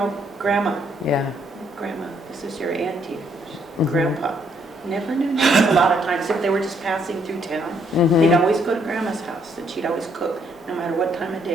grandma. Yeah. Grandma, this is your auntie. Grandpa. Never knew names a lot of times. If they were just passing through town, they'd always go to grandma's house, and she'd always cook, no matter what time of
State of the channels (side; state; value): both; normal; correlation 0.70